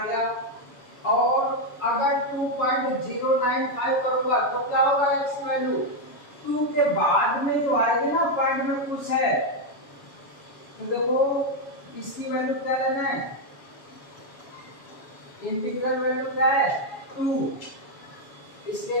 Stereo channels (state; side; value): late; right; 7.2 ms